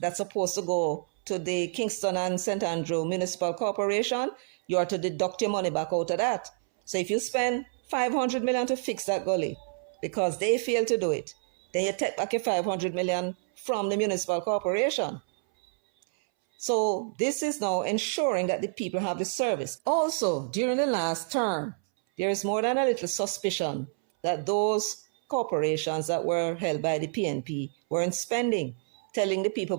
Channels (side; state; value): left; silent; 59 dB below the other